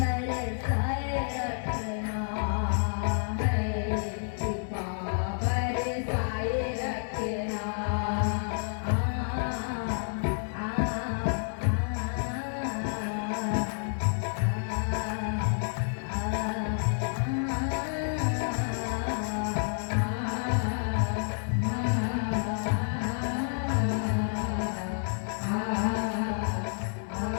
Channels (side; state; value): right; silent; 58 dB below the other